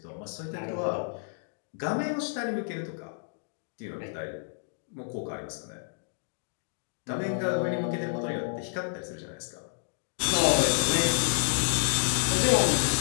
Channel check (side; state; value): right; silent; digital silence